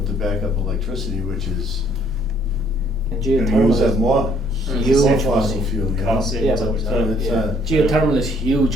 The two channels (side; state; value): both; normal; correlation 0.64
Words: backup electricity, which is And gonna use geothermal up is more huge fossil money. fuel, you know? Cost savings Yeah, over but- time. It's, Yeah, geothermal is